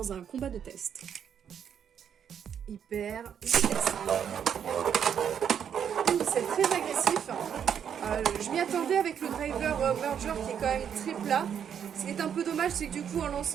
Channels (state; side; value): quieter; left; 8.3 dB